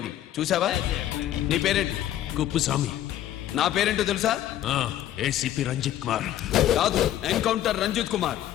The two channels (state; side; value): quieter; right; 12.3 dB